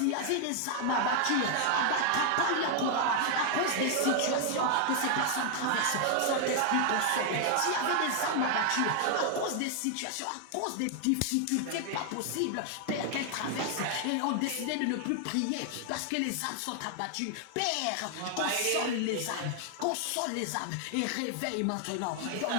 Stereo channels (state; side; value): different; both; correlation 0.00